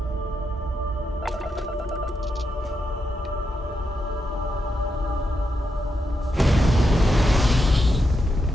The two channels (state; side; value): normal; both; correlation 0.84